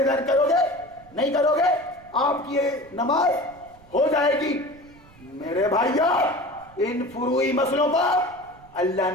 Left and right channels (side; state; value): right; noise; rumble, 25 dB below the sound